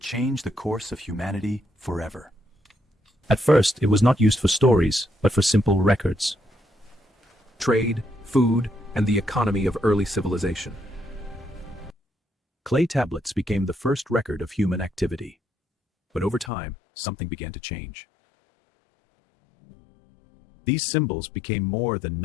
change the course of humanity forever. At first, it was not used for stories, but for simple records. Trade, food, and the economy of early civilization. Clay tablets became the first record of human activity. But over time, something began to change. These symbols became more than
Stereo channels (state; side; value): drops out; right; at 16.5 s